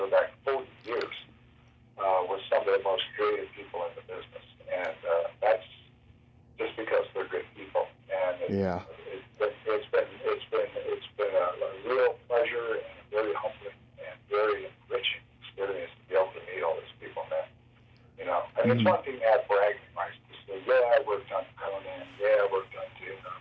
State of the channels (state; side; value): identical; both; correlation 1.00